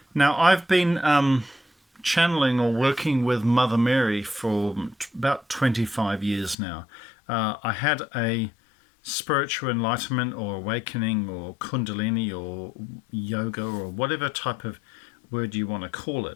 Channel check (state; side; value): drops out; right; at 6.6 s